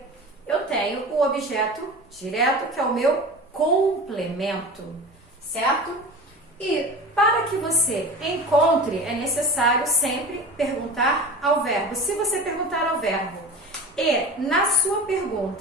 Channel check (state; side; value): normal; both; correlation 0.34